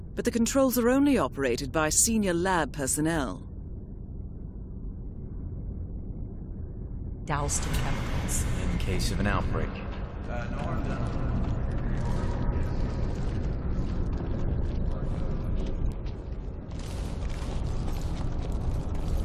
but the controls are only operated by senior lab personnel. Doused in chemicals. In case of an outbreak.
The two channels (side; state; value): both; identical; correlation 1.00